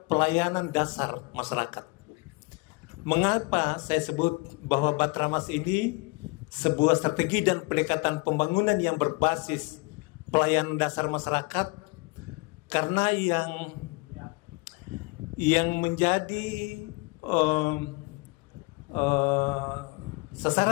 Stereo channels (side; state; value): right; quieter; 26.5 dB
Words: pelayanan dasar masyarakat. Mengapa saya sebut bahwa Bahatramas ini sebuah strategi dan pendekatan pembangunan yang berbasis pelayanan dasar masyarakat? Karena yang menjadi